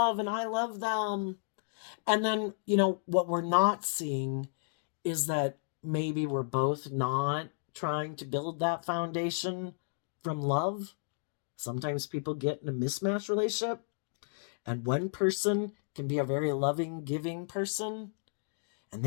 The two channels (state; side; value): silent; right; digital silence